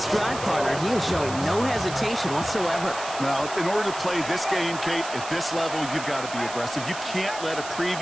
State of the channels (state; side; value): noise; right; hiss, 11 dB below the sound